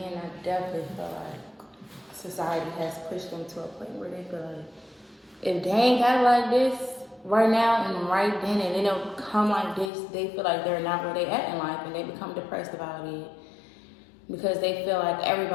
and I definitely feel like society has pushed them to a point where they feel like, if they ain't got it like this right now and right then, and they don't come like this, they feel like they're not where they at in life, and they become depressed about it, because they feel like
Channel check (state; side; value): drops out; right; at 9.9 s